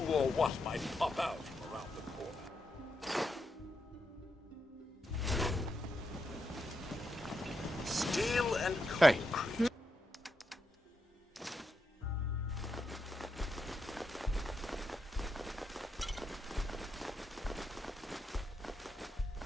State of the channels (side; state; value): both; normal; correlation 0.84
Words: or what might pop out from around the corner. Steel and concrete.